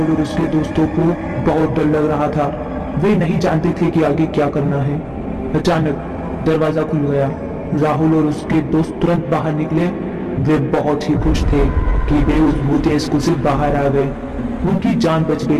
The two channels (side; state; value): both; identical; correlation 1.00